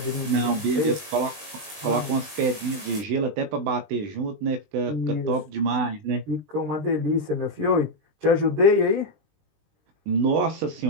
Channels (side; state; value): left; late; 20 ms